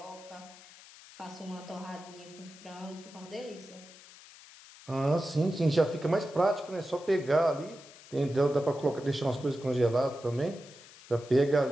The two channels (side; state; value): left; noise; hiss, 20 dB below the sound